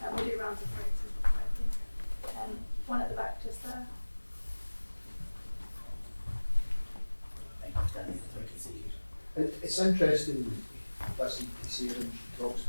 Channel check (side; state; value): both; inverted; correlation -1.00